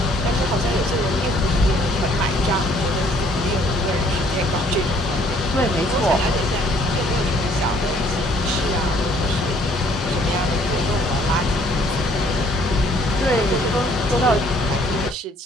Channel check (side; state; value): both; normal; correlation 0.61